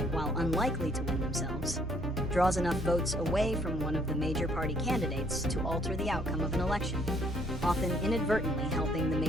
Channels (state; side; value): normal; both; correlation 0.64